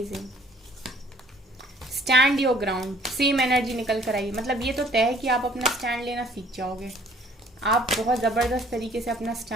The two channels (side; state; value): both; normal; correlation 0.57